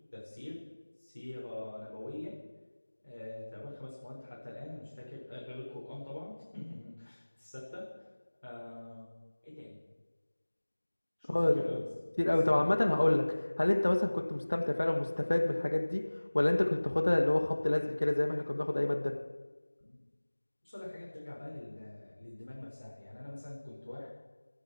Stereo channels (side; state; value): both; inverted; correlation -1.00